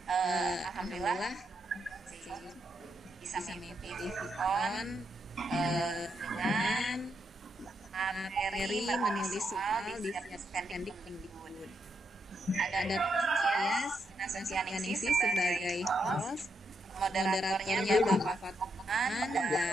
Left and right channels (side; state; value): both; normal; correlation 0.80